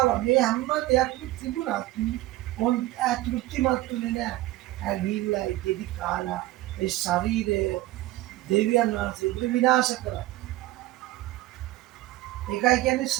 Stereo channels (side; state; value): left; quieter; 17.3 dB